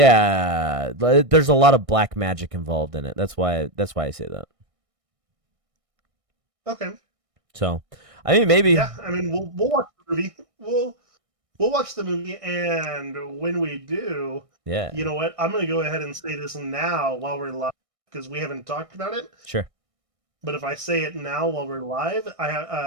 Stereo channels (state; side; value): late; left; 1.6 ms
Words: there's a lot of black magic involved in it. That's why I say that. Okay. So, I mean, maybe. Yeah, I mean, we'll watch the movie. We'll watch the movie, and when we do, yeah, you know what? I'm gonna go ahead and say this now while we're live because we haven't talked about it. Sure. But if I say it now while we're live,